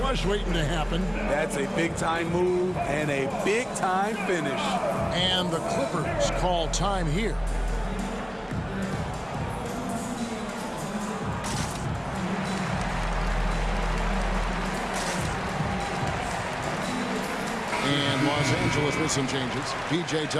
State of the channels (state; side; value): identical; both; correlation 1.00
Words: waiting to happen. That's a big-time move and a big-time finish. And the Clippers call time here. And Los Angeles with some changes. P.J.